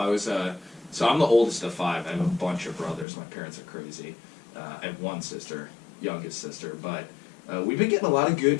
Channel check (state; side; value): drops out; right; at 3.1 s